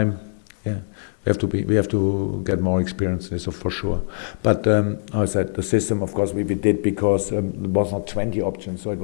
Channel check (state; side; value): silent; right; 59 dB below the other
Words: Yeah, we have to get more experience in this, for sure. But I said the system, of course, we did because there was not 20 options. So it